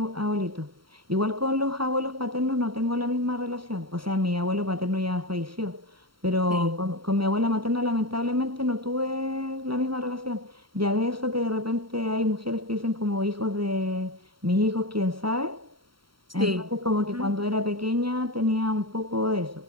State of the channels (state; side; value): late; left; 0.74 ms